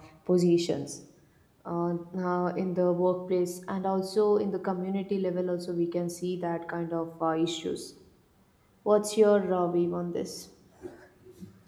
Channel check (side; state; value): both; identical; correlation 1.00